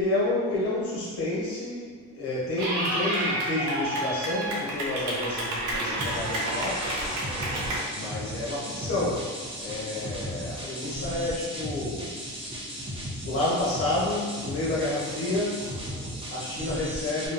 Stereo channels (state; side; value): normal; both; correlation 0.19